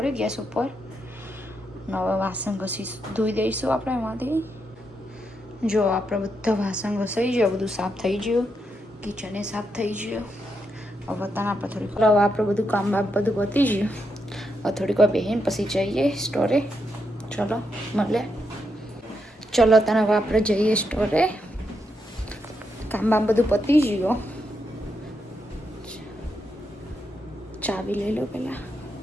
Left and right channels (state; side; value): normal; both; correlation 0.82